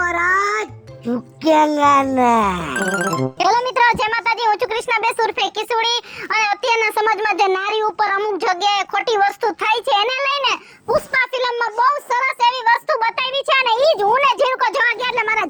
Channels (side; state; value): both; identical; correlation 1.00